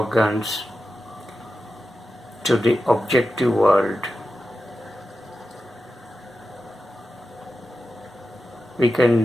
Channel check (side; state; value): both; normal; correlation 0.91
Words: to the objective world. We